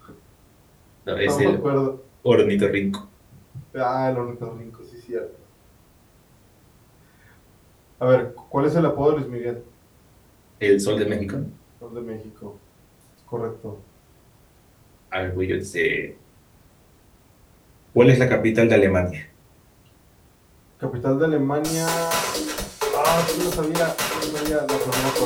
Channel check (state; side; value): identical; both; correlation 1.00